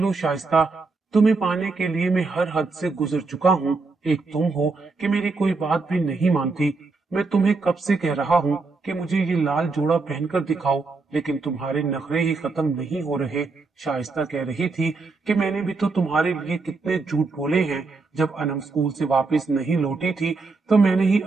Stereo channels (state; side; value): quieter; left; 4.0 dB